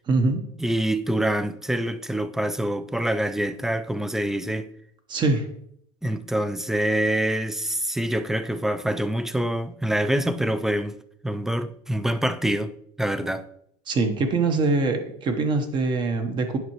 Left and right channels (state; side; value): normal; both; correlation 0.75